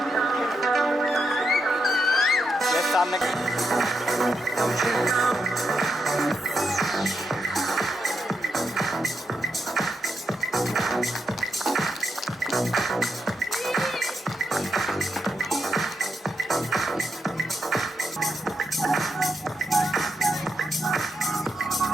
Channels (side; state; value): both; normal; correlation 0.83